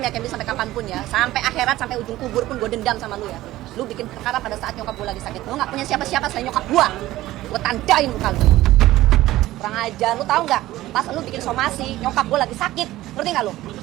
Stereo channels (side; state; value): left; quieter; 16.0 dB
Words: Kemi sampai kapanpun ya. Sampai akhirat, sampai ujung kubur pun gue dendam sama lu ya. Lu bikin perkara pada saat nyokap gue lagi sakit. Lu nggak punya siapa-siapa selain nyokap gue. Gue tandain muka lu. Kurang ajar, lu tahu nggak? Pas lu bikin somasi, nyokap gue lagi sakit. Ngerti nggak lu?